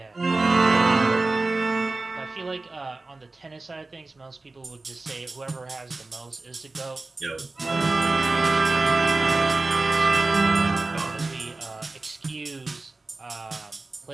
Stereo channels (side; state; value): left; quieter; 3.3 dB